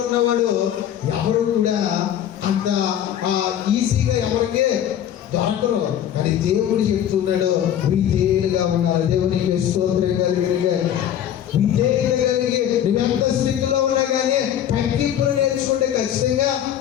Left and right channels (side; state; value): right; quieter; 10.4 dB